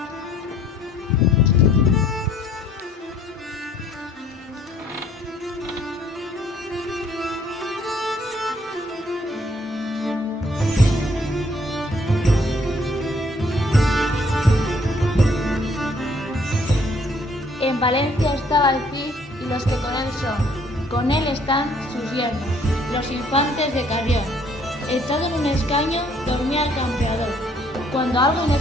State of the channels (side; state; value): both; normal; correlation 0.63